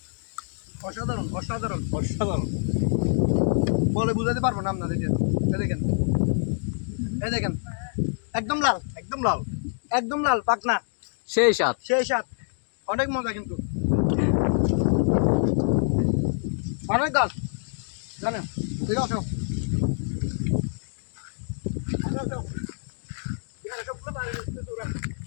অসাধারণ অসাধারণ অসাধারণ বলে বুঝাতে পারবো না আপনাদেরকে। এই দেখেন একদম লাল একদম লাল একদম লাল পাকনা সেই সাত সেই স্বাদ অনেক মজা কিন্তু অনেক গাছ জানেন ঠিক আছে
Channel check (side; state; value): right; silent; digital silence